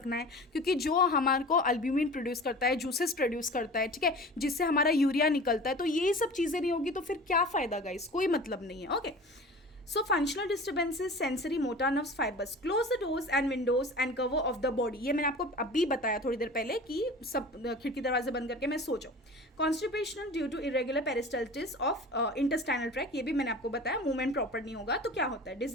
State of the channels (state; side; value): normal; both; correlation 0.38